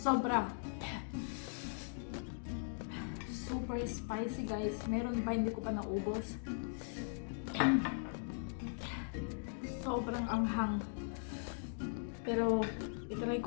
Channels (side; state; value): right; silent; digital silence